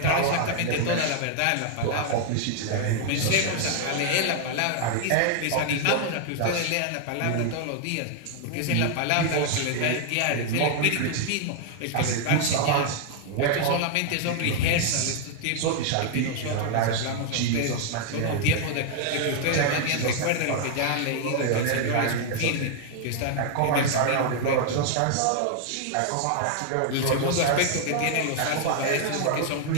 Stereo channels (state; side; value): different; both; correlation 0.00